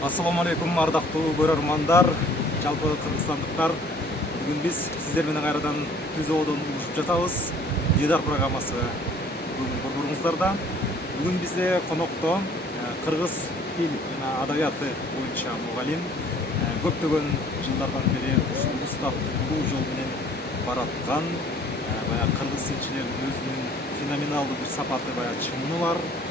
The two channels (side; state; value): both; normal; correlation 0.55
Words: Ассаламу алейкум, ардактуу көрөрмандар, жалпы кыргызстандыктар. Бүгүн биз сиздер менен кайрадан түзөөдөн улушуп жатабыз. Дидар программасы бүгүн борборуңуздарда. Бүгүн бизде конокто кыргыз тил жана адабияты боюнча мугалим, көптөгөн жылдардан бери ушул устаттуу жол менен бараткан, баягы кыргыз тилчилеринин өзүнүн феноменалдуу бир сапаты, баягы чыңы бар,